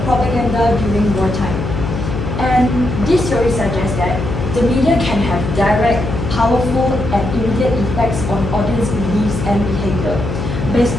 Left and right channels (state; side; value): noise; left; hum, 4 dB below the sound